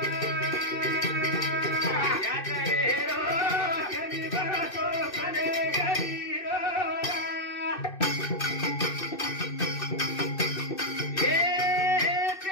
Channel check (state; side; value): late; right; 2.6 ms